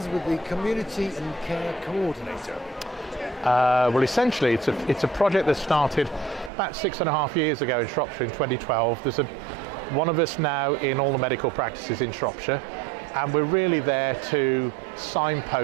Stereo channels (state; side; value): drops out; left; at 6.5 s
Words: with the Community and Care Coordinator? Well, essentially, it's a project that started about 6.5 years ago in Shropshire in 2012. There's one of us now in all the medical practices in Shropshire, and we're really there to